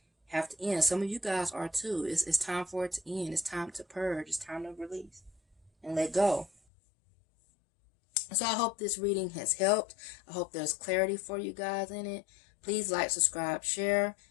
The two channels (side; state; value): right; drops out; at 6.5 s